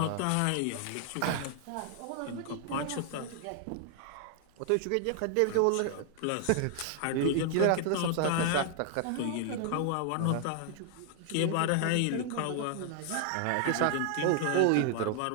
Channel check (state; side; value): different; both; correlation 0.00